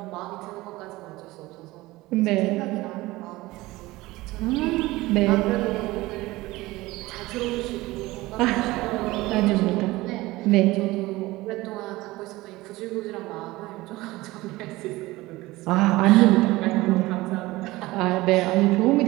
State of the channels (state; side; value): quieter; left; 19.4 dB